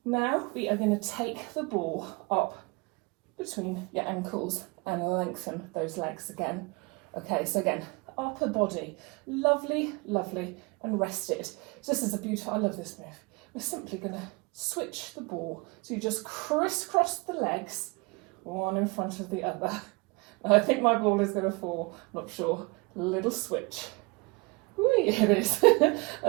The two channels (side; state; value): left; quieter; 28.0 dB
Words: Now we are going to take the ball up between your ankles and lengthen those legs again. Okay, so again, upper body, lovely, lovely, and rested. So this is a beautiful, I love this move. We're simply going to switch the ball. So you just crisscross the legs, one in front of the other. And I think my ball is going to fall, not sure. Little switch. Whee, it is.